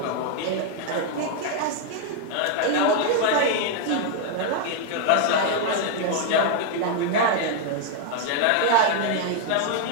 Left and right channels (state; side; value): different; both; correlation 0.00